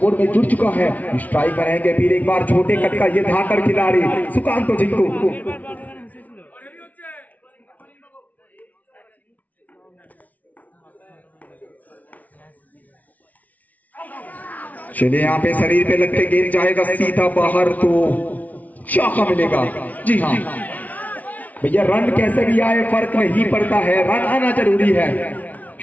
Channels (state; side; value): late; right; 0.073 ms